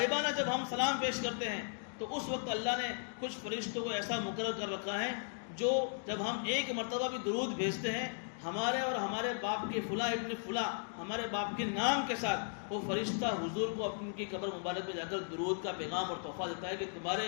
جب ہم سلام پیش کرتے ہیں تو اس وقت اللہ نے کچھ فرشتوں کو ایسا مقرر کر رکھا ہے جو جب ہم ایک مرتبہ بھی درود بھیجتے ہیں ہمارے اور ہمارے باپ کے فلاں ابن فلاں، ہمارے باپ کے نام کے ساتھ، وہ فرشتہ حضور کو اپنی کی قبر مبارک میں جا کر درود کا پیغام اور تحفہ دیتا ہے کہ تمہارے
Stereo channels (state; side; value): silent; right; digital silence